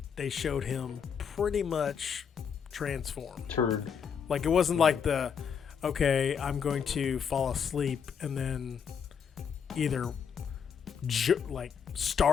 showed him pretty much transformed. Turned. Like it wasn't like okay, I'm going to fall asleep and then either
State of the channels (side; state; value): right; quieter; 7.1 dB